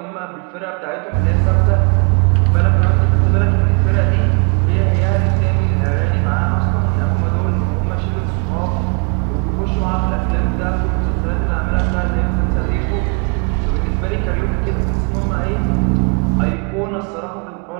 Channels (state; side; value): quieter; left; 37.7 dB